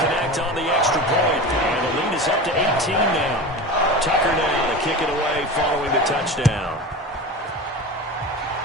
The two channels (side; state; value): both; normal; correlation 0.29